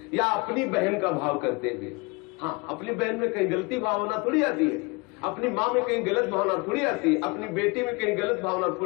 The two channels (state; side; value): quieter; right; 27.8 dB